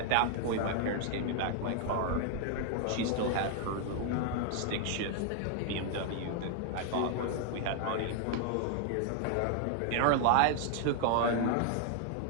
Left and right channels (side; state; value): both; different; correlation 0.00